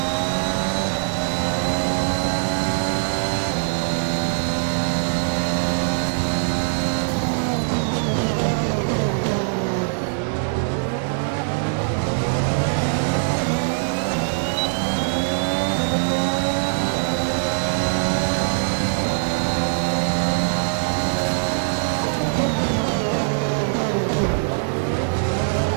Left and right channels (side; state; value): left; silent; digital silence